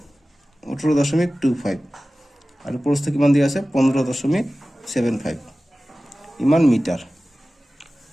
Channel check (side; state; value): both; normal; correlation 0.96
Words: 18.25 আৰু প্ৰস্থ কিমান দিয়া আছে 15.75 ইমান মিটাৰ